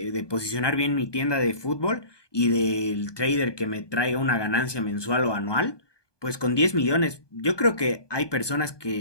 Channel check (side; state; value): right; late; 1.2 ms